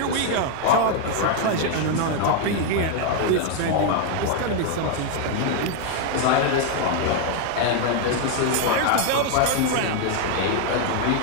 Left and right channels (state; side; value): different; both; correlation 0.01